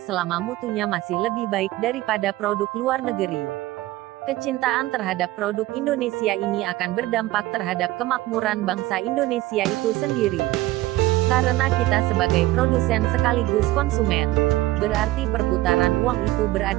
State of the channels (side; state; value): left; quieter; 17.3 dB